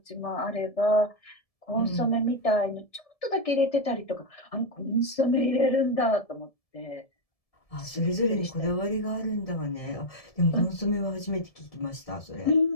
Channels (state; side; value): late; right; 1.7 ms